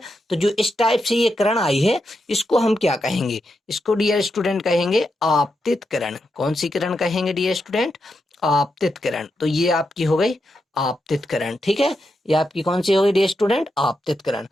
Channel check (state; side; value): normal; both; correlation 0.85